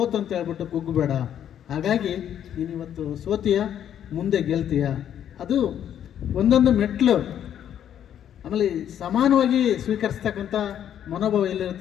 ಅಂತ ಹೇಳ್ಬಿಟ್ಟು ಕುಗ್ಗು ಬೇಡ. ಹಾಗಾಗಿ ನೀನು ಇವತ್ತು ಸೋತೀಯ, ಮುಂದೆ ಗೆಲ್ತೀಯ. ಅದು ಒಂದೊಂದು ಮೆಟ್ಲು. ಆಮೇಲೆ ಸಮಾನವಾಗಿ ಸ್ವೀಕರಿಸ್ತಕ್ಕಂಥ ಮನೋಭಾವ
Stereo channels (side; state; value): right; quieter; 10.0 dB